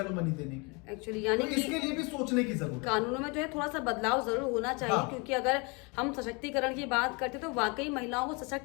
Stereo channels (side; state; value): right; quieter; 30.0 dB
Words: एलुमनी देने की? एक्चुअली यानी तो इसके लिए भी सोचने की जरूरत है। कानूनों में जो है थोड़ा सा बदलाव जरूर होना चाहिए। हाँ। क्योंकि अगर हम सशक्तिकरण की बात करते तो वाकई महिलाओं को